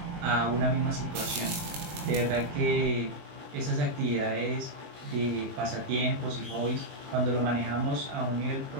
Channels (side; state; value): left; late; 20 ms